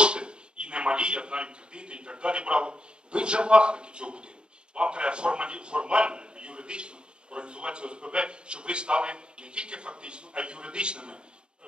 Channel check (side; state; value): left; late; 0.051 ms